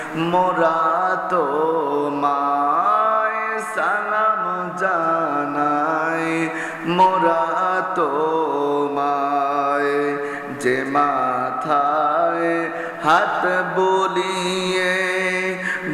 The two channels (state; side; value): identical; both; correlation 1.00